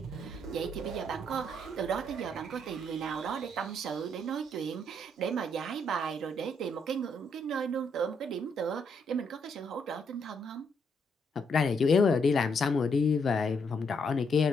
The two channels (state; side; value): normal; both; correlation 0.74